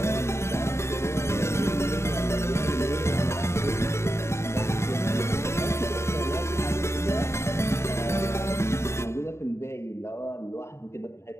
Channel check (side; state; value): right; late; 0.13 ms